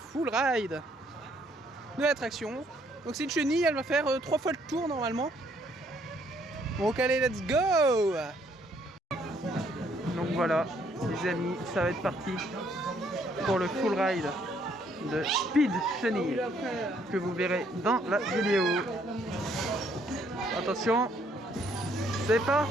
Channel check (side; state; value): both; normal; correlation 0.67